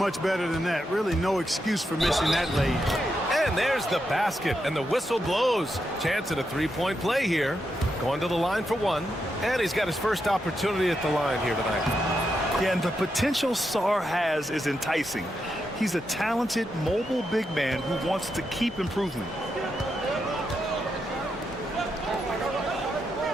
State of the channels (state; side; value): normal; both; correlation 0.84